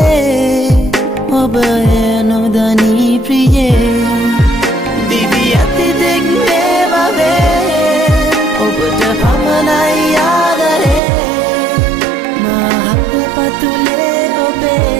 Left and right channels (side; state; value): left; drops out; at 11.0 s